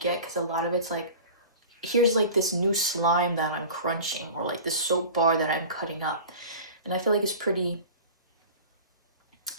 because a lot of it's like, here's like this new slime that I'm crunching, or like this soap bar that I'm cutting up. And I feel like it's pretty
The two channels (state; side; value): inverted; both; correlation -0.38